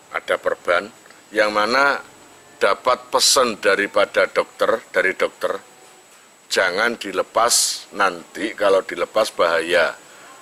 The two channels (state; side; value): identical; both; correlation 1.00